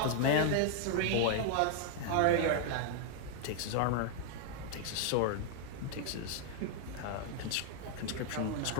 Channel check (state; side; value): different; both; correlation 0.00